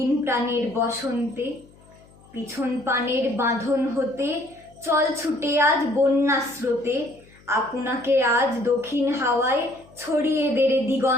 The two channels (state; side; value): noise; left; hum, 27 dB below the sound